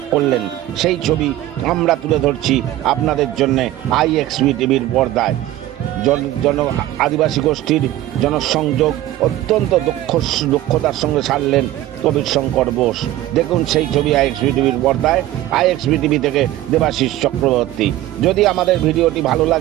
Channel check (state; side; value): quieter; left; 14.7 dB